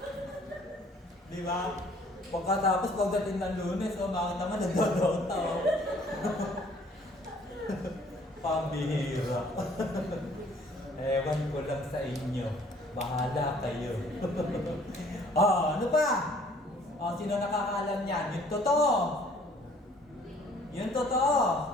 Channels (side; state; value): both; normal; correlation 0.57